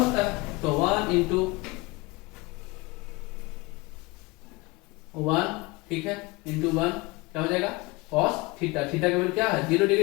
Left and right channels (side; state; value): right; quieter; 24.2 dB